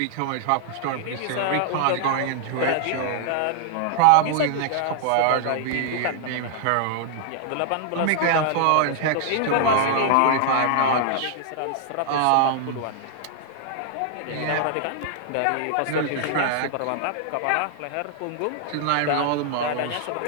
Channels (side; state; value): both; different; correlation 0.00